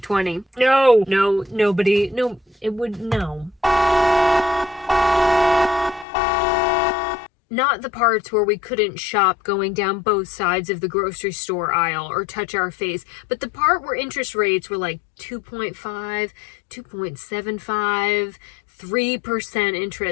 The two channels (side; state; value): right; drops out; at 6.1 s